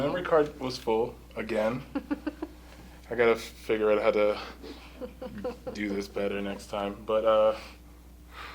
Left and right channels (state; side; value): identical; both; correlation 1.00